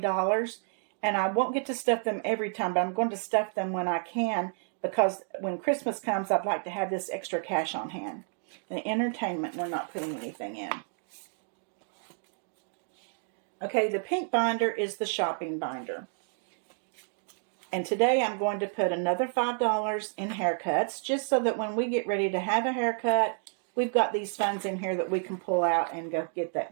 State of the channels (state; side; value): silent; left; 58 dB below the other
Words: and I won't get to stuff them every time, but I'm going to stuff them when I can, because when Christmas comes, I'd like to have this extra cash on hand. The entertainment, we're not putting anything in. Okay, the pink binder is the shopping binder. And today I'm going to put another $5 in haircuts, just so that when we get ready to have a haircut, we've got these funds in here that we can pull out and go get that